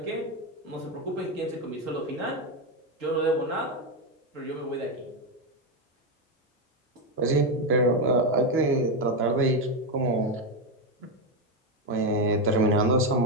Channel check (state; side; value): normal; both; correlation 0.09